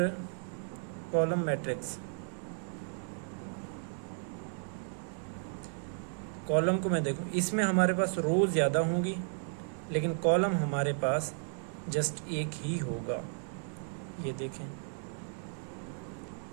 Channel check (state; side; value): silent; left; 55 dB below the other